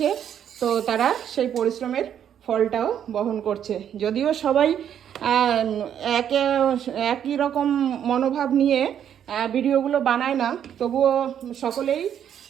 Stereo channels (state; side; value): quieter; left; 9.4 dB